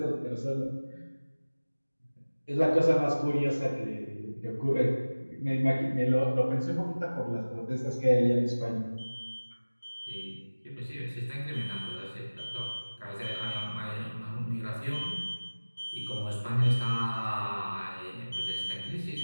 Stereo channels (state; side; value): inverted; both; correlation -1.00